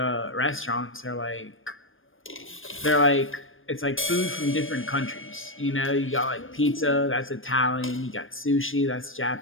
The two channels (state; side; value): late; right; 0.59 ms